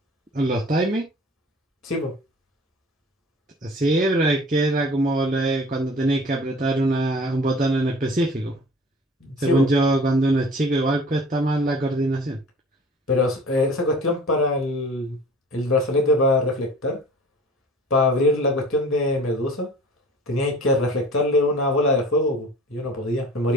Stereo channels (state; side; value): normal; both; correlation 0.45